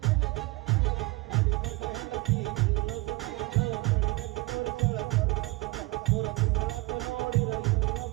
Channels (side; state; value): left; quieter; 22.8 dB